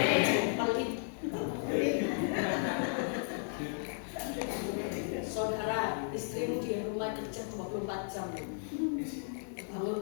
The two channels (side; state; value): right; silent; 55 dB below the other